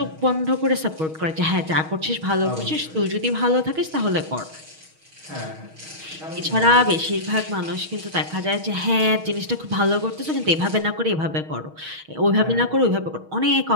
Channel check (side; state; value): left; late; 6.3 ms